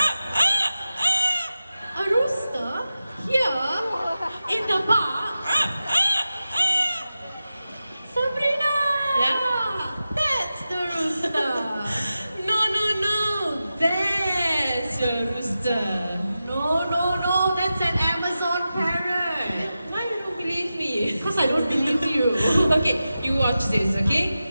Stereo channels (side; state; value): both; inverted; correlation -0.92